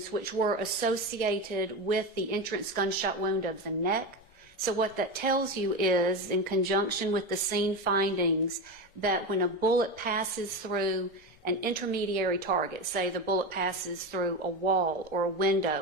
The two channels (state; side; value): normal; both; correlation 0.19